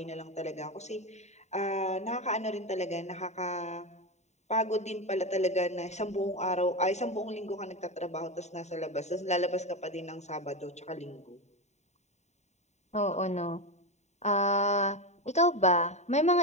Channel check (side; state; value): right; late; 0.33 ms